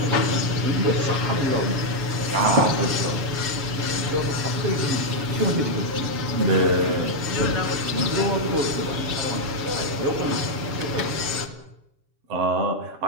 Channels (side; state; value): left; late; 7.2 ms